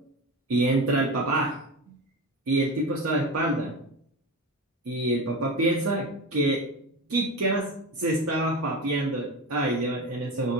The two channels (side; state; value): both; normal; correlation 0.25